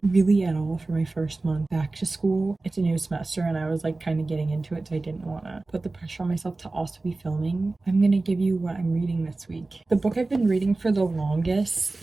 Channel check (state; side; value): quieter; left; 3.3 dB